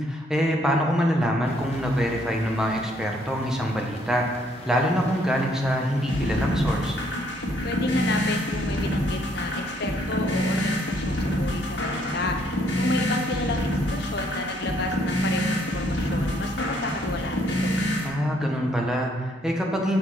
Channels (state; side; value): normal; both; correlation 0.68